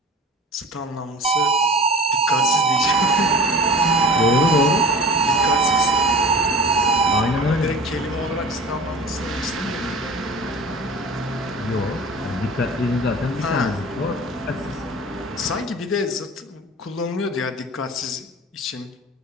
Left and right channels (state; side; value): normal; both; correlation 0.38